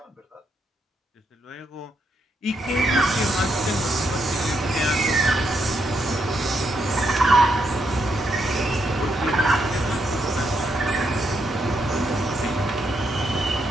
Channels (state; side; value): normal; both; correlation 0.79